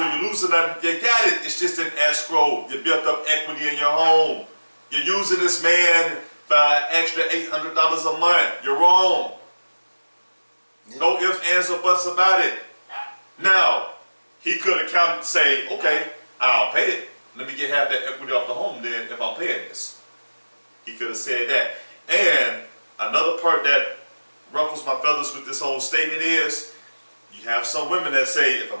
or you're losing nothing. You got it. It's just an escrow. You built up equity in your home. You're using this man for an extra $800 a month. You're wrong. Yeah. No ifs, ands, or buts about it. Now, he could have counted and say, okay, I'll pay it. Let me get half that equity off the home then if I'm paying this. He could have said that. And another part that ruffles my feathers with this whole statement is, you have some women that say if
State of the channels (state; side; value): inverted; both; correlation -1.00